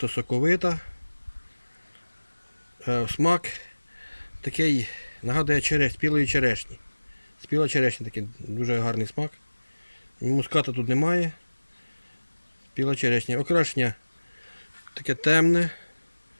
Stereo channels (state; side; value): inverted; both; correlation -1.00